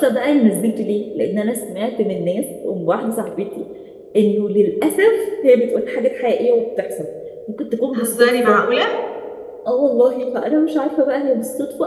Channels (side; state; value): both; identical; correlation 1.00